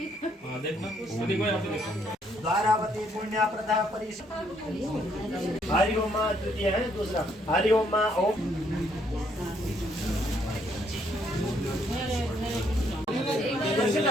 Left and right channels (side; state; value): both; normal; correlation 0.70